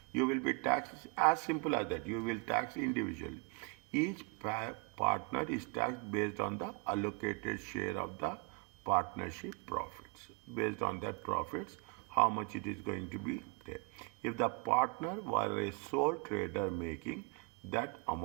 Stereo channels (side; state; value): left; quieter; 30.0 dB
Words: you will be taxed as simple as that. You will tax individually. Each partner is taxed based on the allocated share of the partnership profits. Based on that profits, how much it is going to be there. If the partner were a sole trader making that